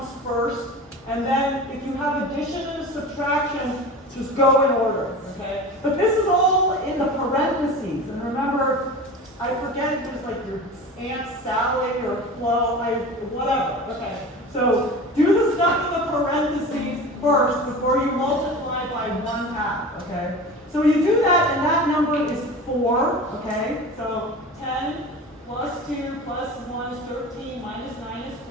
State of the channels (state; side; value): normal; both; correlation 0.33